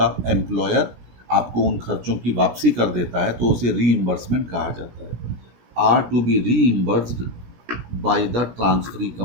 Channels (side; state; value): left; late; 17 ms